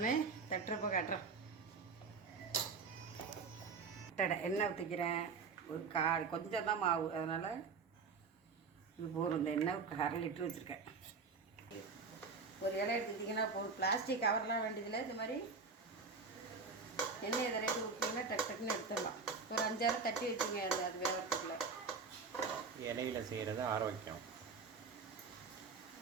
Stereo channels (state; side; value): quieter; left; 4.9 dB